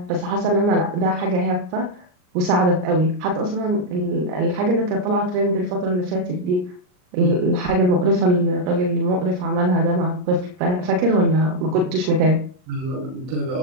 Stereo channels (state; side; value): late; left; 39 ms